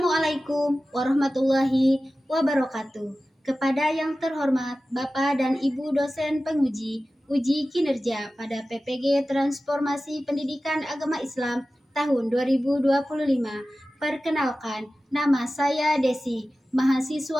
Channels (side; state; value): both; normal; correlation 0.95